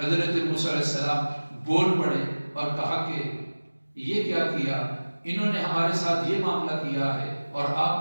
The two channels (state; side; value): inverted; both; correlation -1.00